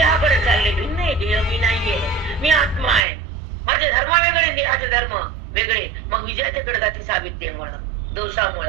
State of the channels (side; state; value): left; drops out; at 3.0 s